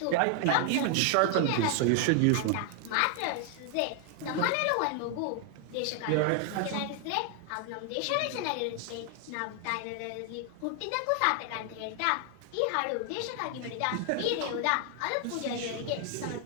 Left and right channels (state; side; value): different; both; correlation 0.00